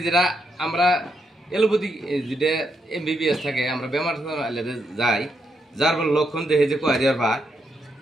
যেটা আমরা এলোপ্যাথিক যেটা MBBS থাকে, আমরা বেমার যাই, যার লক্ষণ দেখে যে কয়ারিয়ার বা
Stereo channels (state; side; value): normal; both; correlation 0.80